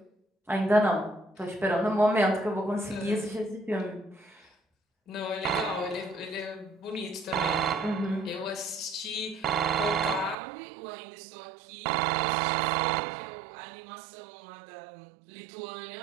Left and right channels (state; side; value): drops out; left; at 10.4 s